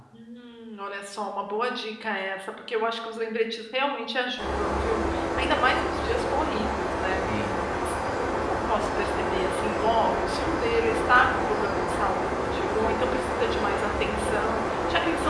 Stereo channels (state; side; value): identical; both; correlation 1.00